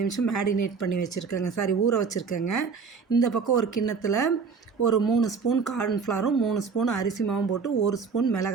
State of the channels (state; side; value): quieter; left; 5.4 dB